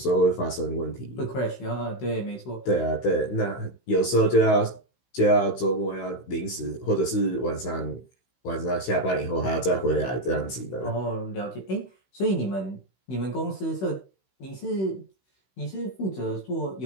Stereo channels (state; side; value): late; right; 16 ms